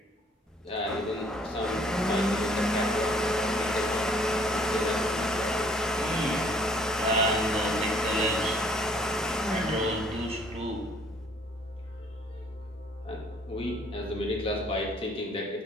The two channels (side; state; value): both; normal; correlation 0.60